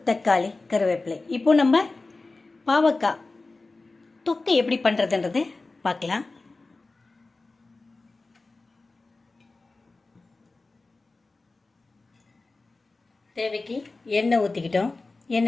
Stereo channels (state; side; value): quieter; right; 3.5 dB